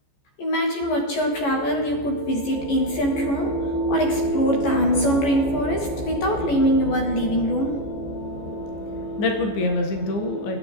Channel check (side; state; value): right; late; 14 ms